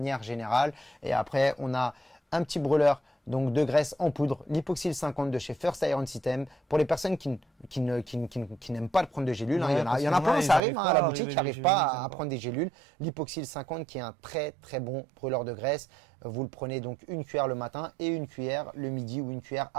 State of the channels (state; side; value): drops out; left; at 10.6 s